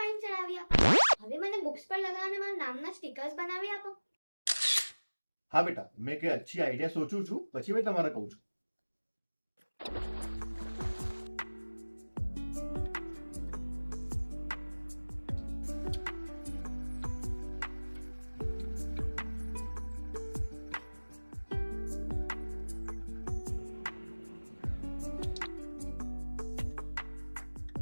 ચડાવી આપો. હવે મને બુક્સ પર લગાવવાના મારા નામના સ્ટીકર્સ બનાવી આપો. હા બેટા, મેં કઈ અચ્છી આઈડિયા સોચું છું, પછી મેં તમારે કહું છું.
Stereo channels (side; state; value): both; inverted; correlation -1.00